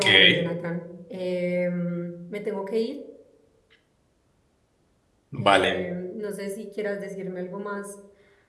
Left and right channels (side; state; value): both; identical; correlation 1.00